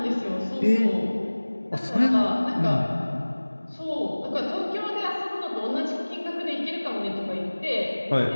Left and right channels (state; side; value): inverted; both; correlation -1.00